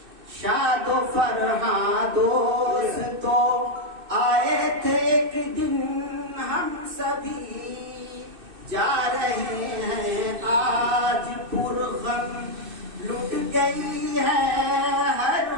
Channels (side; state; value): left; late; 2.6 ms